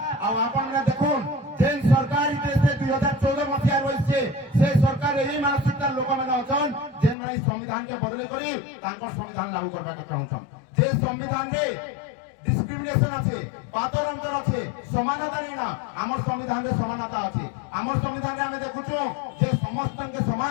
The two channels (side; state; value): right; drops out; at 7.2 s